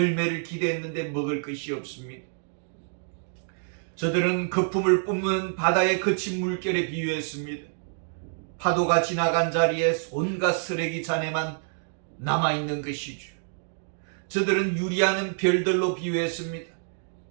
기대했는데 먹을 것이 없습니다. 저들은 거품을 뿜는 바다의 거친 물결에 비유했습니다. 파도가 지나간 자리에 온갖 쓰레기 잔해만 남아있는 것이죠. 저들은 유리하는 별들로 비유했습니다.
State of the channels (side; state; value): left; silent; digital silence